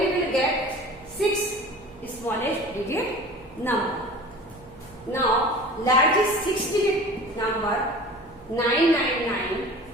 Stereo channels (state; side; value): noise; right; hum, 24 dB below the sound